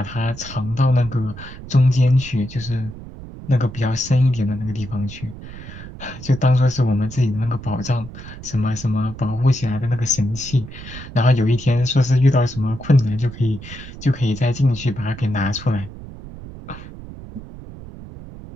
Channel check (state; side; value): noise; right; rumble, 14 dB below the sound